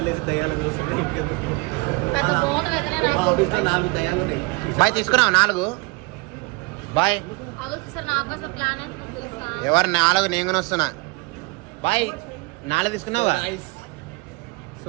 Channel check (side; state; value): left; quieter; 27.0 dB